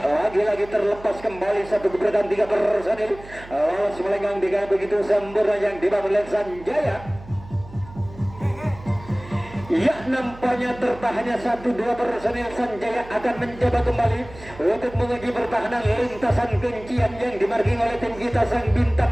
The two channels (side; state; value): right; noise; hum, 18 dB below the sound